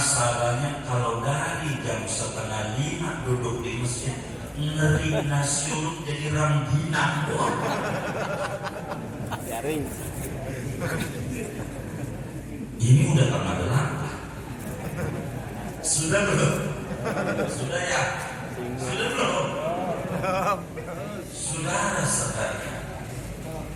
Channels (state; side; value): identical; both; correlation 1.00